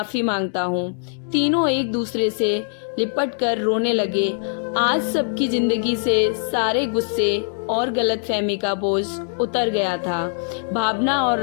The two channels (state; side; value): silent; right; digital silence